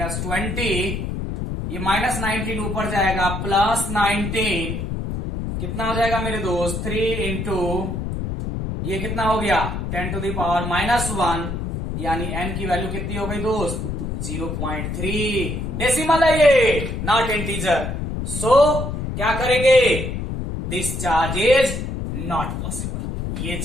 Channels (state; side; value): noise; left; rumble, 4 dB below the sound